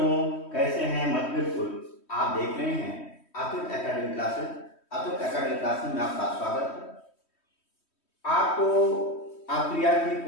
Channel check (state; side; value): late; right; 3.1 ms